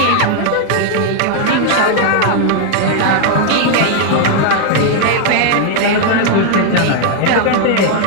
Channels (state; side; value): different; both; correlation 0.00